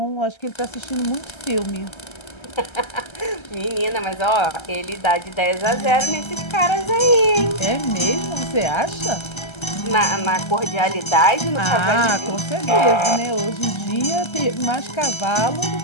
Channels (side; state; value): right; late; 1.3 ms